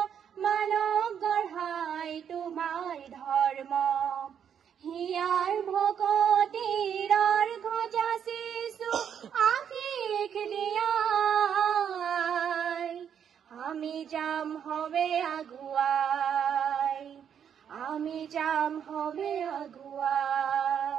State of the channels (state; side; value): quieter; left; 8.4 dB